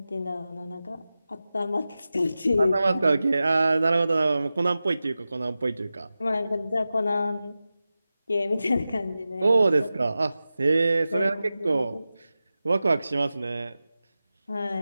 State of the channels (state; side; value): inverted; both; correlation -0.94